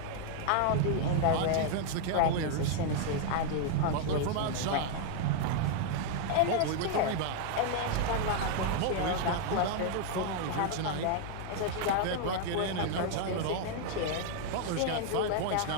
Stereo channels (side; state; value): both; different; correlation 0.00